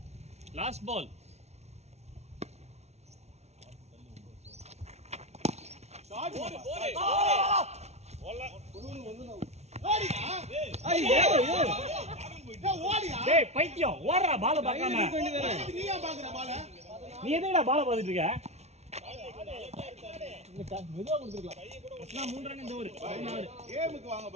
Last ball. டேய் பைத்தியம் ஓடுறா பால பார்க்காம. நீயா பாக்குற பால? நீ எதுக்குடா பால பார்த்துட்டு இருக்க? மெதுவா கொடுத்துருக்கலாம். 3 ரன் இந்த ஓவர். 16. கேமுக்கு வாங்க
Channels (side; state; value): left; late; 0.31 ms